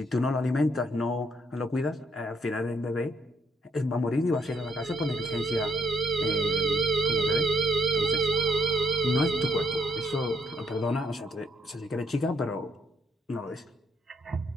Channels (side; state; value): both; normal; correlation 0.72